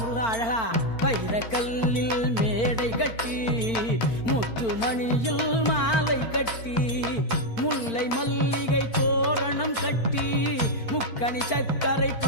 அழகா. வைரக்கல்லில் மேடை கட்டி, முத்துமணியில் மாலை கட்டி, முல்லை மல்லிகை தோரணம் கட்டி, முக்கணி சக்கரை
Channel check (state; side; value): late; right; 4.4 ms